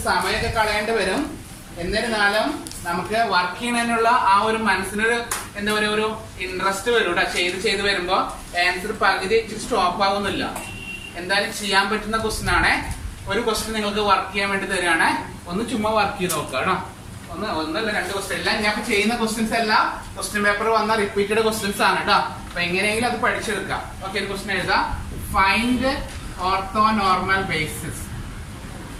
സമയമൊക്കെ കളയേണ്ടി വരും. എന്നിരുന്നാലും നമുക്ക് വർക്ക് ചെയ്യുന്നതിനുള്ള ആ ഒരു മനസ്സിനൊരു എന്താ പറയുക, ഒരു ഇൻട്രസ്റ്റ് വരും കേട്ടോ. ചെയ്ത് വരുമ്പോ ആൻസർ പകുതി സ്റ്റോപ്പ് ആവുന്നില്ല. എന്തായാലും ചെയ്യാൻ പറ്റുന്ന ക്വസ്റ്റ്യൻ ആണ്. ഒരു ക്വസ്റ്റ്യൻ നിങ്ങൾക്ക് വർക്ക് ചെയ്യാൻ വേണ്ടി തരികയാണ്. ഒന്ന് ചുമ്മാ വർക്ക് ചെയ്ത് നോക്കുക കേട്ടോ. ഒന്നല്ല, 2 ക്വസ്റ്റ്യൻ. എല്ലാം ഞാൻ ചെയ്യുന്ന ക്വസ്റ്റ്യൻസ് എല്ലാം ക്വസ്റ്റ്യൻ പേപ്പർ വന്ന റിപ്പീറ്റഡ് ക്വസ്റ്റ്യൻസ് ആണ് കേട്ടോ. അപ്പൊ എങ്ങനെയെങ്കിലും അത് പഠിച്ചെടുക്കാം. ഓക്കെ, ഒരു ക്വസ്റ്റ്യൻ എഴുതാം. Find orthonormal basis.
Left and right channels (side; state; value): both; identical; correlation 1.00